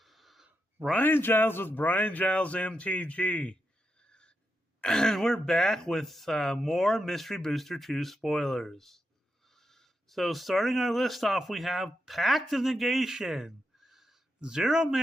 Brian Giles with Brian Giles MTG. And we're back with more Mystery Booster 2 spoilers. So starting our list off, we have Pact of Negation. 0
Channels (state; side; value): normal; both; correlation 0.85